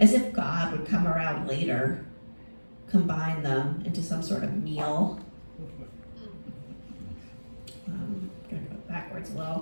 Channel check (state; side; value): inverted; both; correlation -1.00